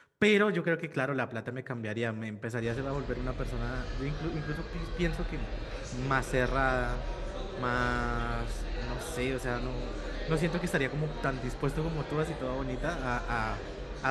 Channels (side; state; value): both; identical; correlation 1.00